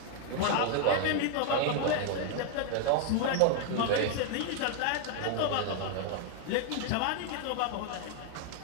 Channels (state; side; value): different; both; correlation 0.00